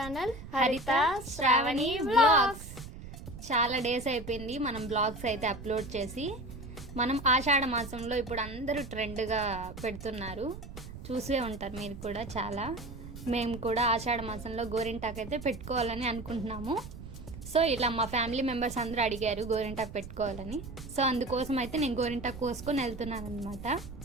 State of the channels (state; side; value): noise; right; rumble, 12 dB below the sound